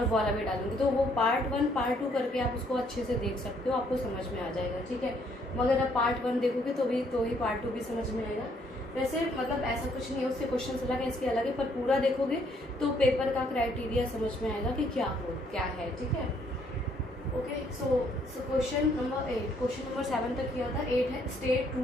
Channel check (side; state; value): both; normal; correlation 0.68